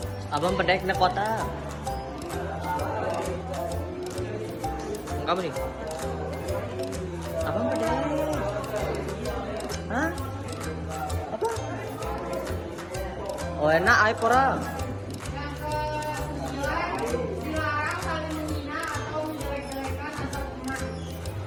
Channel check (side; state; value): both; identical; correlation 1.00